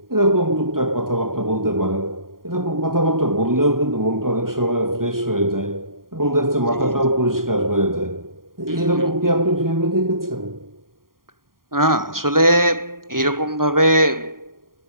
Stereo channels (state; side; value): late; left; 0.91 ms